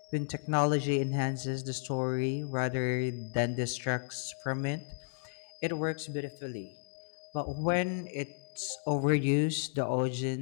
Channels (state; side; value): silent; right; digital silence